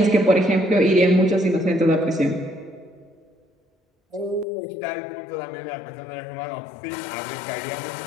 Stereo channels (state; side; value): drops out; right; at 4.5 s